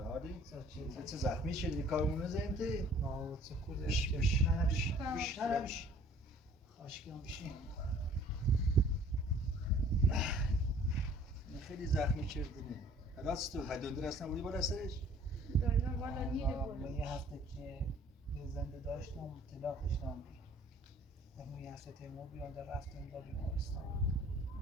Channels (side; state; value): both; normal; correlation 0.54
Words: چه زخمی شدی کارمون نزدیم تی؟ نه چه خوده بش خاشکی هم بشین خیلی زخمی کردنی راست تو دندون اصلا بودی بالا سرش؟ دندون بالا نیره من یه هفته که یه زنده داشتم طلاق داشتم در یه هفته تیمور بیانده رفتم با بیمارستان